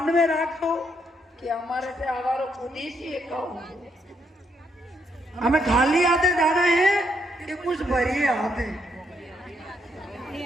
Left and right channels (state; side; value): normal; both; correlation 0.76